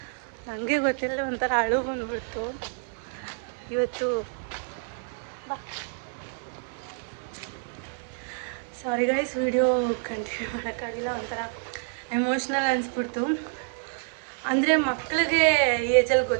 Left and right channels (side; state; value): left; silent; 59 dB below the other